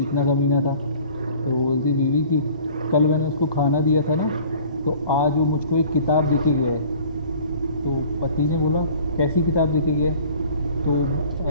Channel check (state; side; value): inverted; both; correlation -0.49